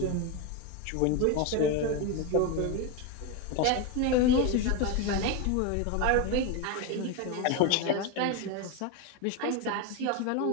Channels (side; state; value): both; different; correlation 0.03